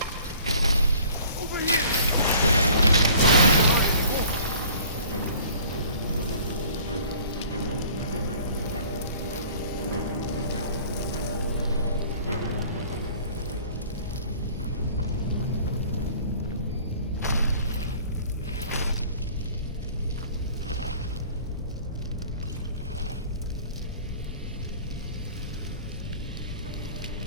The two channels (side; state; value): both; inverted; correlation -0.50